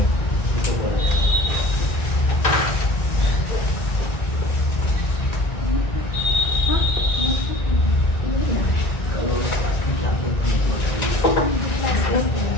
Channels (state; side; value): late; right; 1.9 ms